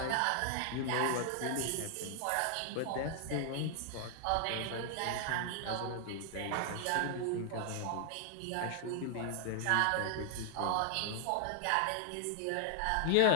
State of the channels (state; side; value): different; both; correlation 0.00